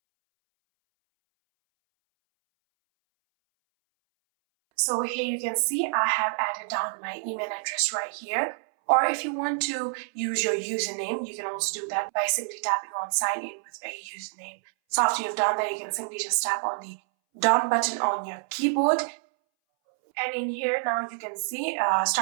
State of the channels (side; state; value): left; silent; 60 dB below the other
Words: So here you can see I have added down my email address right here. Or if you want to use your username, you can also do that by simply tapping on sign in with a username. So after you've done that, you can simply just tap on the done button on your keyboard. And in here now you can see